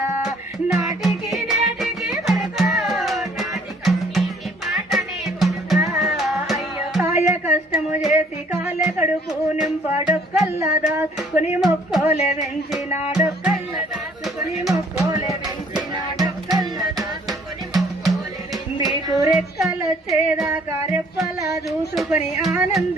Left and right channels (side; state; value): both; normal; correlation 0.60